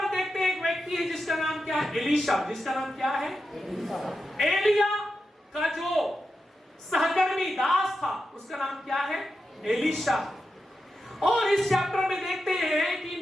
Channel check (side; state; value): both; normal; correlation 0.89